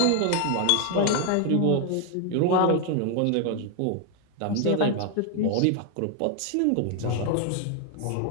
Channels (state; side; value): different; both; correlation 0.01